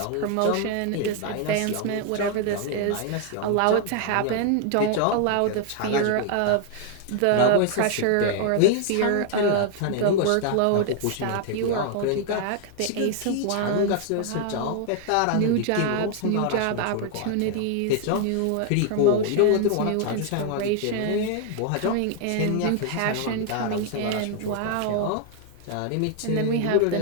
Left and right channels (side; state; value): both; different; correlation 0.00